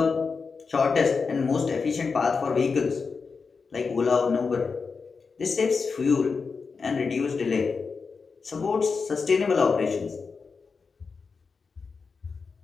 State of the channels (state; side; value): quieter; right; 5.0 dB